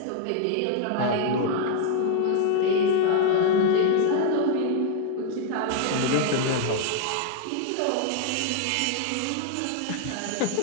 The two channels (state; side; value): different; both; correlation 0.00